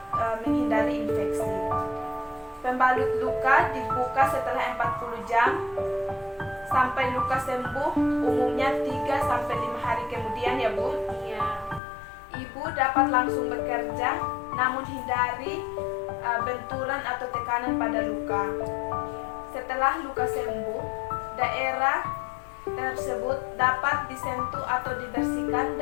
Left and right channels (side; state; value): right; drops out; at 11.8 s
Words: menghindari infeksi. Pembalut luka dibuka setelah 40 jam sampai luka sembuh, umumnya 3-5 hari kemudian ya Bu. Iya. Ibu dapat langsung bekerja, namun hindari benturan atau tekanan pada luka. Setelah luka sembuh, daerah tersebut dapat disentuh atau dibersihkan